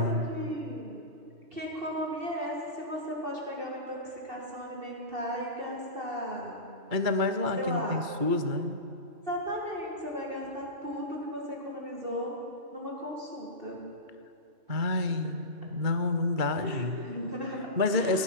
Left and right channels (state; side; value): late; left; 2.3 ms